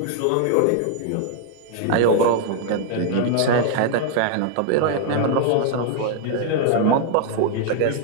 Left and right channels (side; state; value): both; different; correlation 0.00